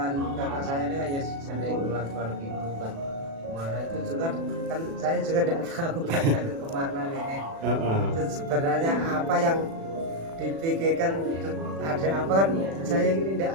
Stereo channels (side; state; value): left; late; 36 ms